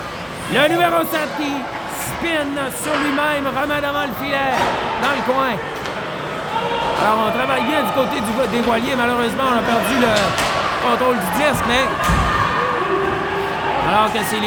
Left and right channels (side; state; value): both; identical; correlation 1.00